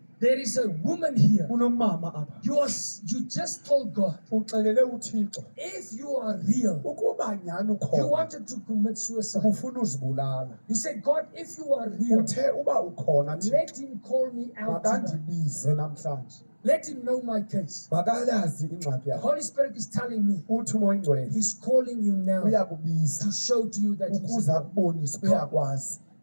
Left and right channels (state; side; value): inverted; both; correlation -1.00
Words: there is a woman here. Kunomama apha. You just told God, Uxelele uThixo. if you are real, Ukuba nyani you ukhona. wanted to commit suicide. Ufuna uzibulala. You said, God, if you are real, Uthe uba ukhona Thixo. let him call me out tonight. Makandibize namhlanje. Let him know my case. Makalazi ingxaki The yakho. Holy Spirit is telling me Uthi umoya oyingcwele he's calling you now uyakubiza to show to you that he's ukuze real. akubonise uyakwazi